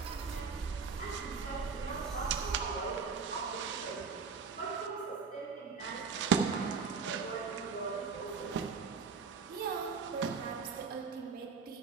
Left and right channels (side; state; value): left; quieter; 5.4 dB